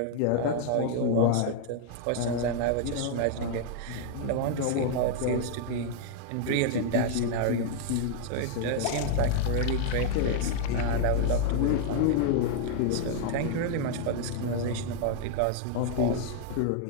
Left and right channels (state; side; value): different; both; correlation 0.00